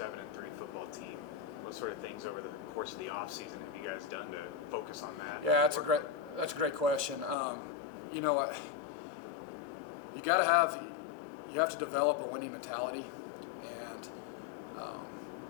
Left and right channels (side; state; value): right; drops out; at 7.4 s